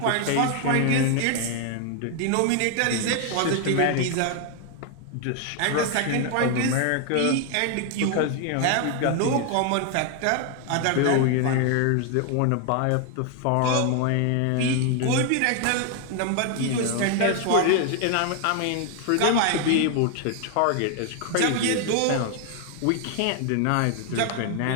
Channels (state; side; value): different; both; correlation 0.00